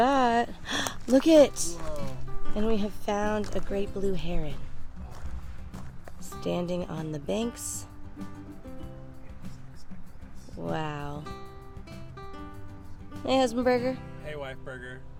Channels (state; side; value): identical; both; correlation 1.00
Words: Look it! Whoa. And we have found a great blue heron standing on the banks. Wow. Hey, Husbandberger. Hey, Wife Burger.